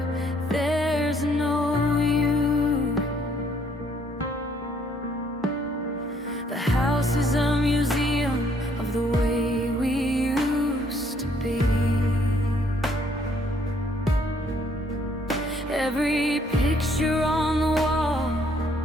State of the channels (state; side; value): normal; both; correlation 0.66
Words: there's no you. The house is a museum of the way we used to be. Every picture on the wall